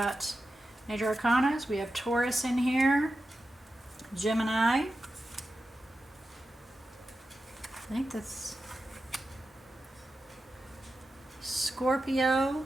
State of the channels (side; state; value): both; normal; correlation 0.91